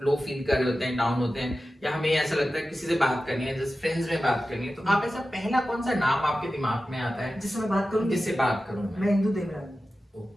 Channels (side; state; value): both; normal; correlation 0.94